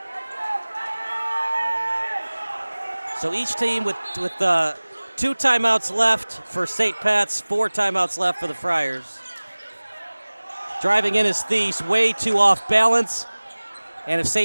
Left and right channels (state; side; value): inverted; both; correlation -1.00